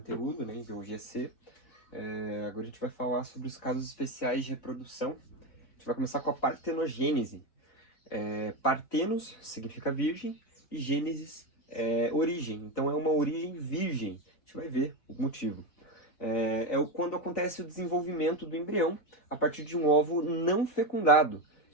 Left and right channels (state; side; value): late; right; 3.9 ms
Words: né, em biologia C, agora a gente vai falar sobre os casos especiais de reprodução. A gente vai começar com a partenogênese. Partenos significa virgem e gênesis é origem. Então é uma origem virgem. A gente vai ver o motivo. Quando acontece o desenvolvimento do embrião a partir de um óvulo não fecundado,